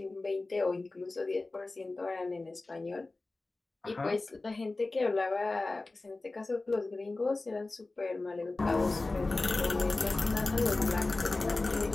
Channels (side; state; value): right; quieter; 3.3 dB